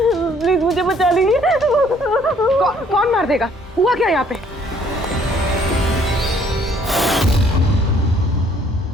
प्लीज मुझे बचा लीजिए। कौन मार देगा? हुआ क्या यहाँ पे?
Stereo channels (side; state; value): both; normal; correlation 0.61